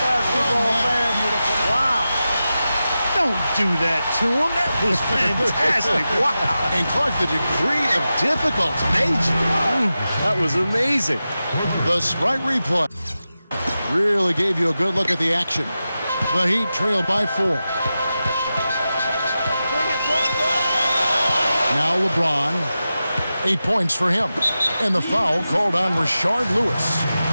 man? Wow. Don't do that to him. That was fantastic. Wow. And Clark, the degree of difficulty. Major. That was amazing. The Sprite replay really gave you a good look at the action. The Heat trail by 4. Now LeBron, 8 points for him. And the foul called on Rashard Lewis.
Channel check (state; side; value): inverted; both; correlation -0.92